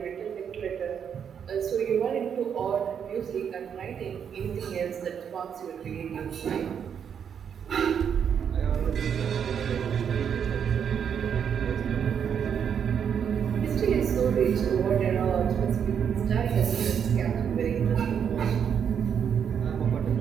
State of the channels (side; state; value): left; quieter; 7.8 dB